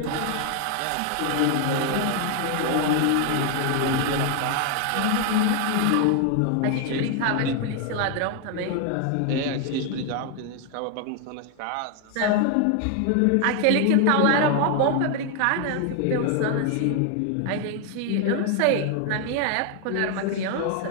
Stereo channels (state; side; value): different; both; correlation 0.00